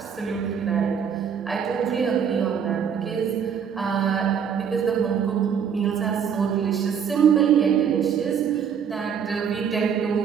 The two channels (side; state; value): left; quieter; 7.5 dB